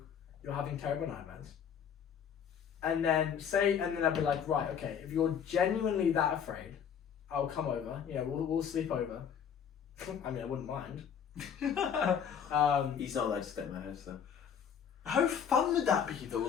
you're having terrible nightmares, and then I'd be like, right, okay, if you're genuinely that afraid, I'll come over. You know, we'll sleep over. I mean, I wouldn't mind. He's not allowed to stay in my house though. How fun would that be though?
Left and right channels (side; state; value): right; quieter; 7.8 dB